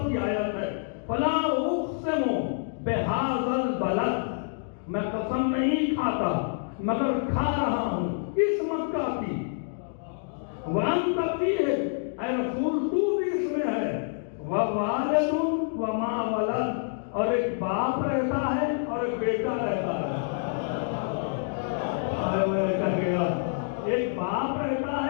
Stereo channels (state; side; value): silent; right; digital silence